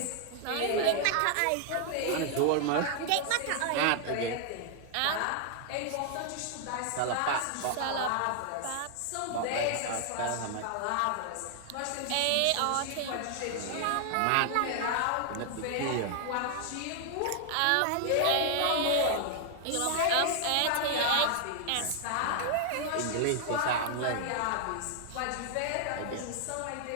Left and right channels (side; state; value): both; different; correlation 0.00